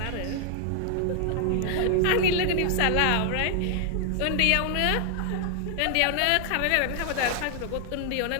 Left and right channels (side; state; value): both; different; correlation 0.00